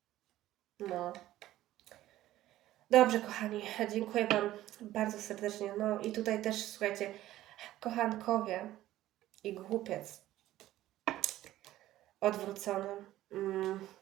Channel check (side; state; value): left; quieter; 14.6 dB